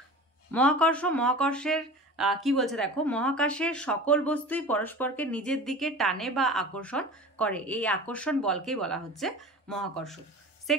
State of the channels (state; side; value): normal; both; correlation 0.36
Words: মহাকর্ষের কি বলছে দেখো, মহাকাশের সকল বস্তুই পরস্পরকে নিজের দিকে টানে বা আকর্ষণ করে, এই আকর্ষণ বলকেই বলা হচ্ছে মহাকর্ষ।